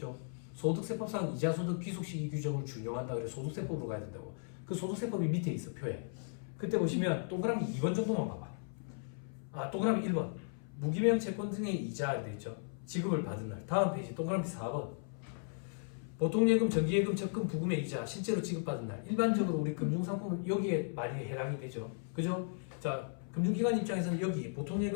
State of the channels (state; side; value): silent; right; 54 dB below the other